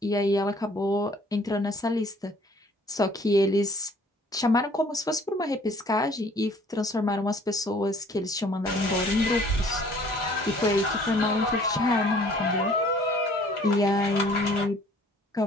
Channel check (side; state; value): both; normal; correlation 0.56